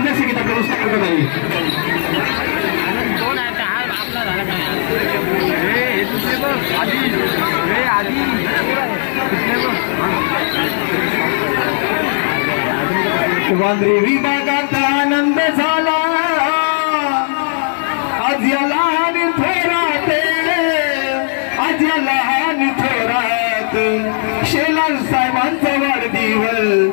संगीत आपल्या व्यवस्था करत आहे वांद्रे विभागात आनंद झाला आज या लहान थोरात आज या लहान थोरात शेलार साहेबांचा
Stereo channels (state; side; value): silent; right; digital silence